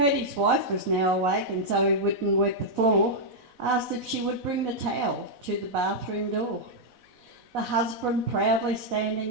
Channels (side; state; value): left; late; 4.0 ms